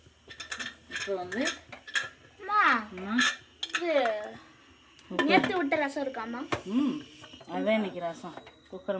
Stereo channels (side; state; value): both; identical; correlation 1.00